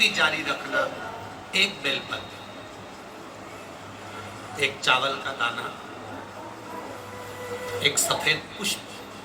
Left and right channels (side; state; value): both; identical; correlation 1.00